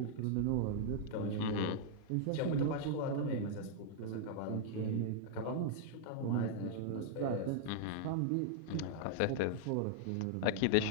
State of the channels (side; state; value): both; different; correlation -0.01